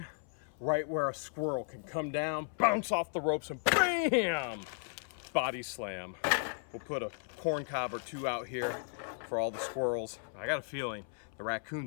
right where a squirrel can come down, bounce off the ropes, and bam! Body slam. We'll put a corn cob or 2 out here for all the squirrels. I got a feeling the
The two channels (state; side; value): silent; right; 54 dB below the other